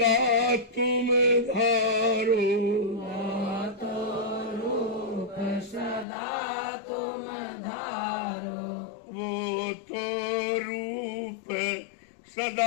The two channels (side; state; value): right; drops out; at 6.1 s